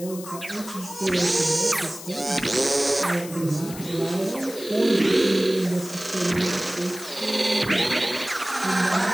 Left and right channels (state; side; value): noise; left; hiss, 14 dB below the sound